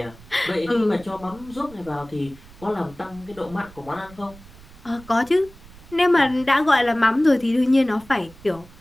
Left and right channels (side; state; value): right; noise; rumble, 21 dB below the sound